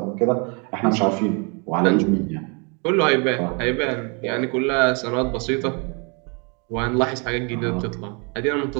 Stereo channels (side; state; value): left; quieter; 33.8 dB